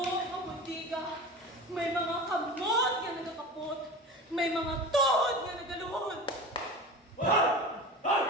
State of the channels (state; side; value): normal; both; correlation 0.32